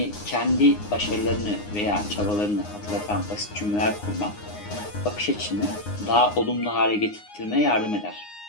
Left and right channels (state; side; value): late; right; 9.7 ms